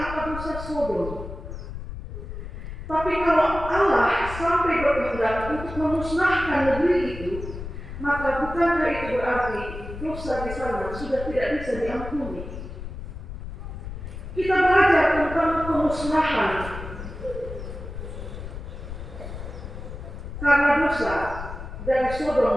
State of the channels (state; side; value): noise; left; rumble, 9 dB below the sound